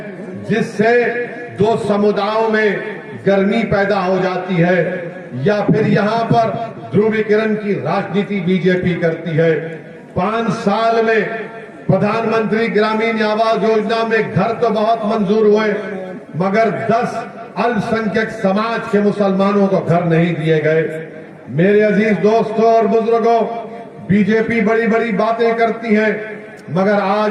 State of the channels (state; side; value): identical; both; correlation 1.00